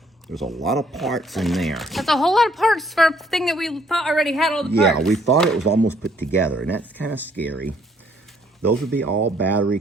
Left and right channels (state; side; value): normal; both; correlation 0.65